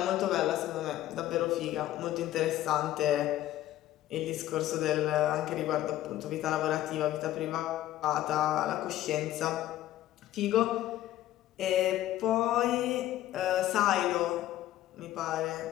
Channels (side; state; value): right; quieter; 13.8 dB